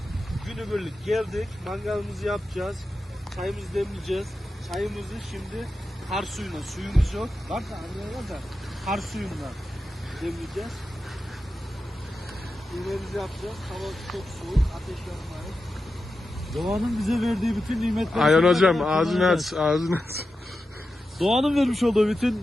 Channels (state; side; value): normal; both; correlation 0.91